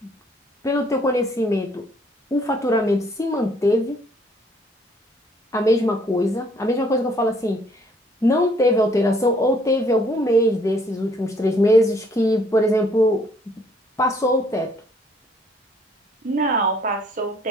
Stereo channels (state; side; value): normal; both; correlation 0.63